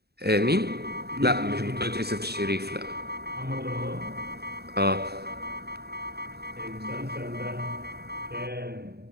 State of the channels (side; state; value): left; late; 0.47 ms